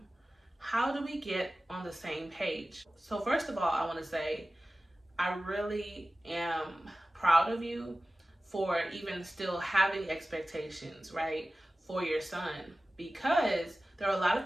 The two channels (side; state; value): both; normal; correlation 0.96